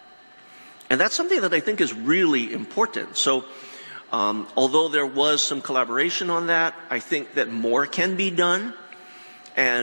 And that's something that I think is really important. So although there was some collaboration on that, I think that more can be done.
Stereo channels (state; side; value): inverted; both; correlation -1.00